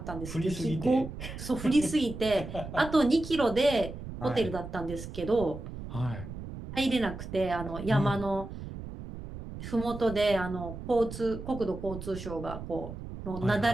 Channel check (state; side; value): noise; right; rumble, 10 dB below the sound